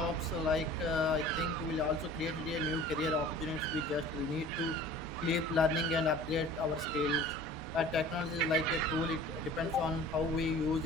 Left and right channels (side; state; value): both; normal; correlation 0.45